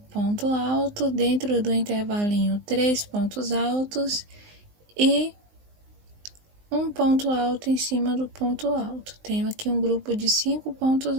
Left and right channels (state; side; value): late; left; 19 ms